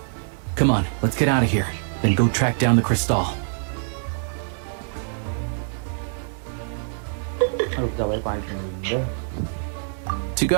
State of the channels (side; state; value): left; silent; digital silence